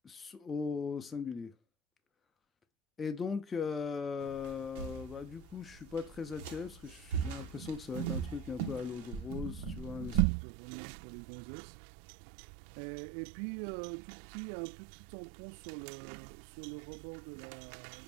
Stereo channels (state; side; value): drops out; left; at 10.2 s